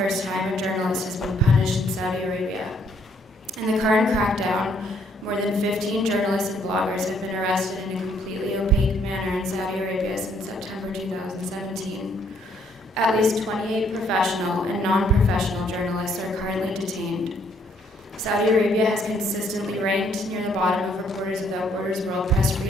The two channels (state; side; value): normal; both; correlation 0.67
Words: time a journalist has been punished in Saudi Arabia. In the current crackdown, more than 15 journalists and bloggers have been arrested in a completely opaque manner in Saudi Arabia since September 2017. At least 28 professional and non-professional journalists are currently detained. Saudi Arabia has consistently ranked near the bottom of Reporters Without Borders World Press